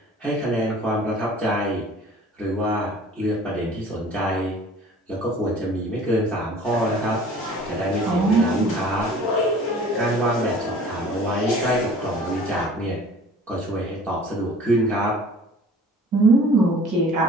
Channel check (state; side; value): normal; both; correlation 0.48